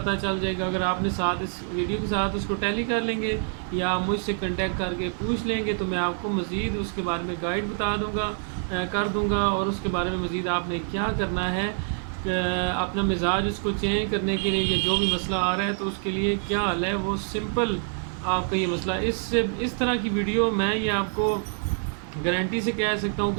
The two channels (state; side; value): silent; left; digital silence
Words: چل جائے گا۔ اگر آپ نے ساتھ اس ویڈیو کے ساتھ اس کو ٹیلی کر لیں گے یا مجھ سے کنٹیکٹ کر کے پوچھ لیں گے تو میں آپ کو مزید اس کے بارے میں گائیڈ بتا دوں گا، کر دوں گا، اور اس کے بارے میں مزید آپ نے کیا کرنا ہے اپنا مزاج اس کو چینج کرنے کے لیے، یا جو بھی مسئلہ آ رہا ہے تو اس کے لیے کیا حل ہے، وہ سمپل آپ کا یہ مسئلہ۔ اس طرح کی ویڈیو میں یہ آپ کو گارنٹی سے کہہ سکتا ہوں